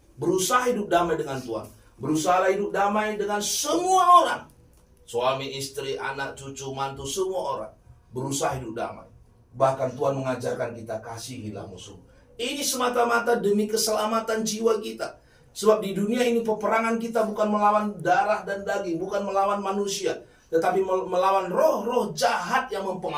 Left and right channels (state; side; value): identical; both; correlation 1.00